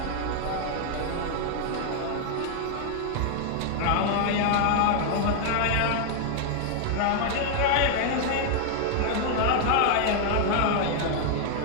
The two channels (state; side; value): different; both; correlation 0.00